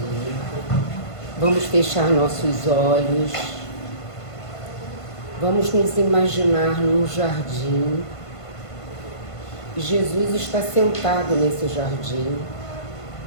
Vamos fechar nossos olhos. Vamos nos imaginar num jardim. Jesus está sentado nesse jardim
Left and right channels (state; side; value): late; right; 1.5 ms